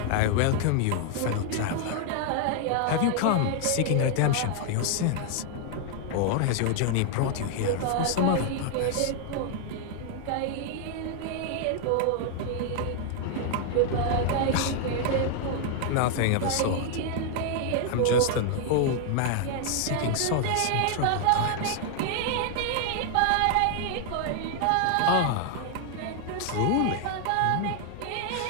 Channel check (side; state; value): both; different; correlation 0.00